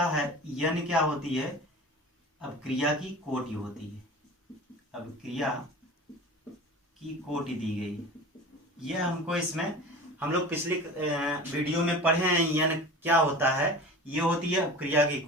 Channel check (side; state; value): both; normal; correlation 0.36